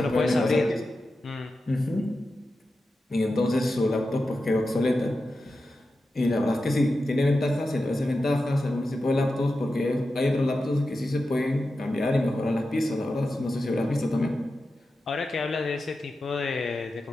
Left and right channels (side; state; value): both; normal; correlation 0.91